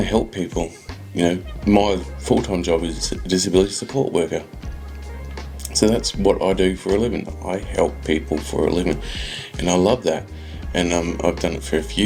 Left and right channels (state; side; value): identical; both; correlation 1.00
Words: help people. My full-time job is a disability support worker, so that's what I do for a living. I help people for a living, and I love that. And I've done it for a